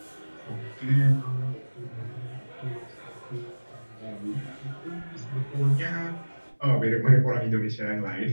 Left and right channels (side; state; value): both; inverted; correlation -1.00